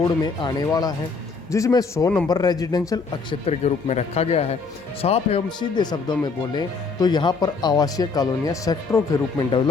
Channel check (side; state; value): right; quieter; 4.5 dB